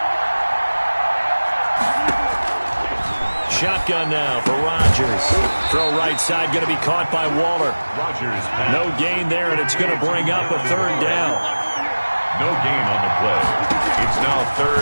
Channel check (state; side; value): inverted; both; correlation -1.00